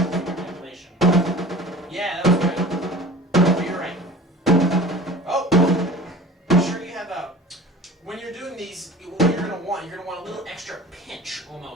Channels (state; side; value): normal; both; correlation 0.41